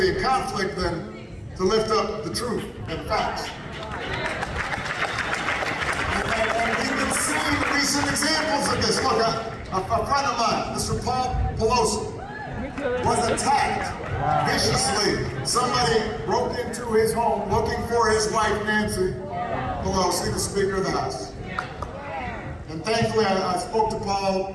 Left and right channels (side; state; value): both; identical; correlation 1.00